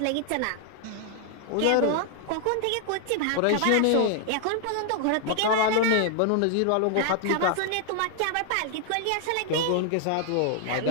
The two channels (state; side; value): different; both; correlation 0.00